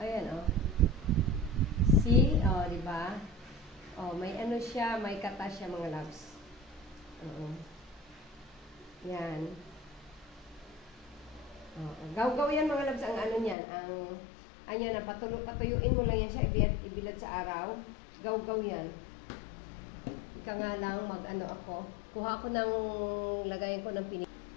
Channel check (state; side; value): drops out; right; at 13.6 s